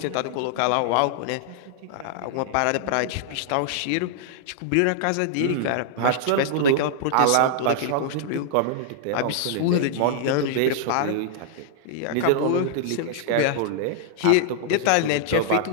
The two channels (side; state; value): both; different; correlation -0.01